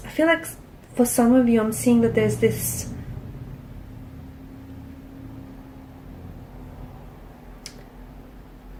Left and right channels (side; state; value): both; identical; correlation 1.00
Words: like for some of you, I'm seeing that there's this